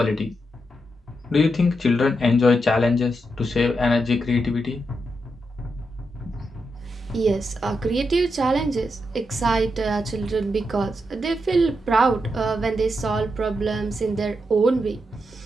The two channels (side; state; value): both; normal; correlation 0.84